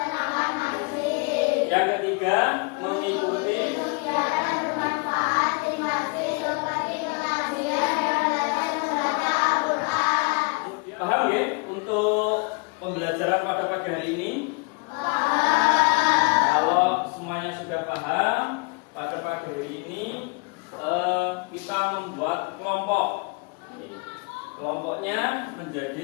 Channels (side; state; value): right; quieter; 30.6 dB